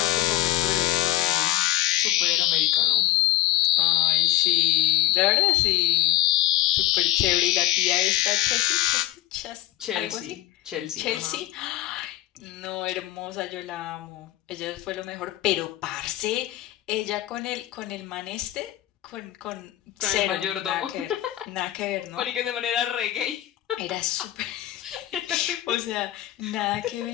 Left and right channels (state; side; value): quieter; right; 15.6 dB